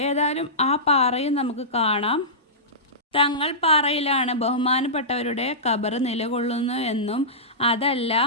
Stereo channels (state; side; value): normal; both; correlation -0.18